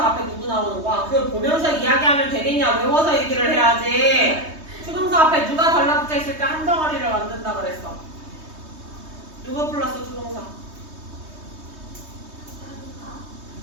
앞에 누구 나오는 거야? 그걸 보면서 이야기하면 되겠냐? 외워서 얘기를 해야지. 투동사 앞에 누가 달라붙어 있을 때 한 덩어리를 만든다 그랬어. 누구 플러스 투동사?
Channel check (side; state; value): left; late; 3.2 ms